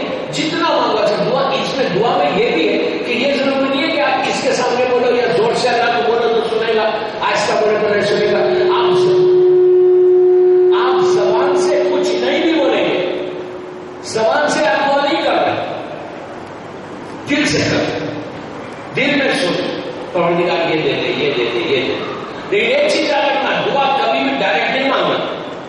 جتنا مانگو. اچھا دعا میں یہ بھی ہے کہ یہ ضروری نہیں ہے کہ آپ کس کے سامنے بولو یا زور سے اللہ کو بولو تو سنے گا، آہستہ بولے تو نہیں سنے گا. آپ زبان سے کچھ نہیں بھی بولیں گے، زبان سے آپ دعا نہیں کر رہے، دل سے کر، دل میں سن پروردگار یہ دیتے یہ دیتے یہ دیتے. لیکن ایک چیز یاد رکھنا، دعا کبھی بھی ڈائریکٹ نہیں مانگنا،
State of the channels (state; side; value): identical; both; correlation 1.00